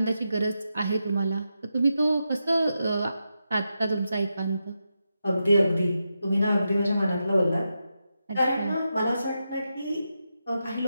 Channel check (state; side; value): inverted; both; correlation -0.87